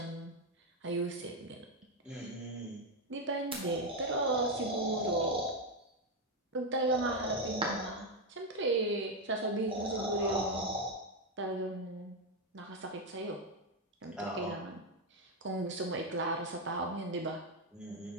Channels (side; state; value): both; normal; correlation 0.05